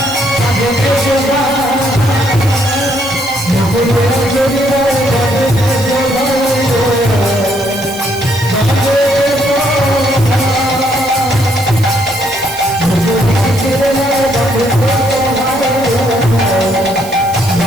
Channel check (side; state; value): right; noise; hiss, 15 dB below the sound